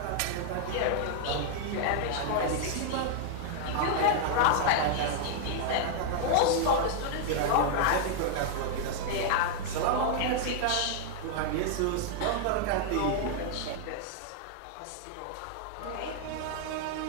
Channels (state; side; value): different; both; correlation 0.00